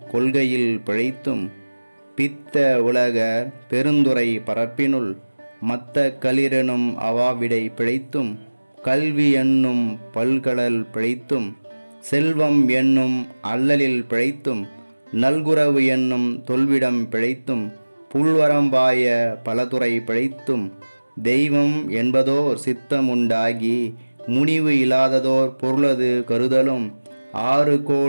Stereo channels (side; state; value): both; inverted; correlation -1.00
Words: கொள்கையில் பிழைத்தும் பித்த உலகர் பெருந்துரை பரப்பினுள் மத்த களிரெனும் அவாவிடை பிழைத்தும் கல்வி என்னும் பல்கடல் பிழைத்தும் செல்வம் என்னும் அல்லலில் பிழைத்தும் நல்குரவு என்னும் தொல்விடம் பிழைத்தும் புல்வரம்பாய பலதுறை பிழைத்தும் தெய்வம் என்பதோர் சித்தமுண்டாகி முனிவு இல்லாததோர் பொருளது கருதலும் 6